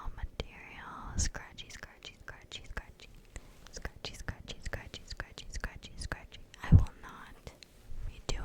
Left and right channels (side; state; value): both; identical; correlation 1.00